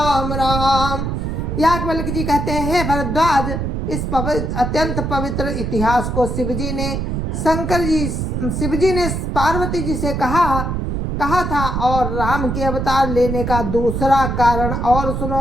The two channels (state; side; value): noise; right; rumble, 2 dB below the sound